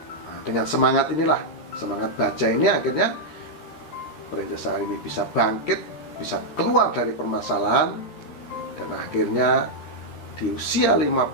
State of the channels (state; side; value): late; right; 13 ms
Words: Nah, dengan semangat inilah, semangat baja ini akhirnya Princess Syahrini bisa bangkit, bisa keluar dari permasalahan. Dan akhirnya di usia